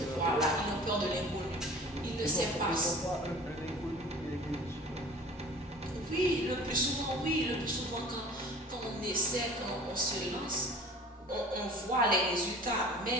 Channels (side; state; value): both; normal; correlation 0.44